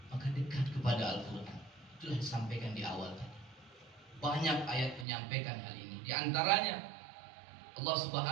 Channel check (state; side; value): drops out; left; at 5.1 s